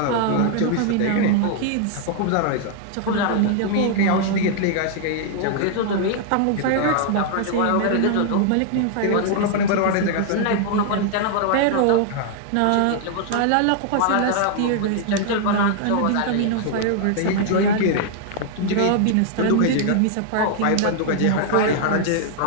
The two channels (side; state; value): both; different; correlation 0.00